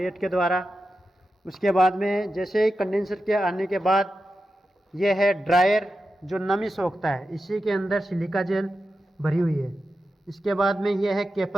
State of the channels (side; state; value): both; normal; correlation 0.90